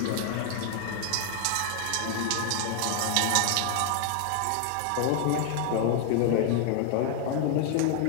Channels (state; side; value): different; both; correlation 0.00